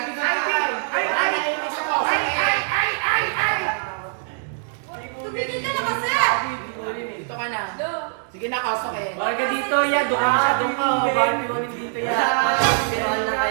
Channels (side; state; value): left; silent; digital silence